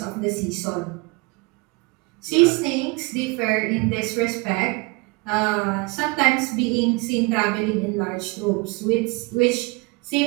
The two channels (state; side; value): quieter; left; 27.1 dB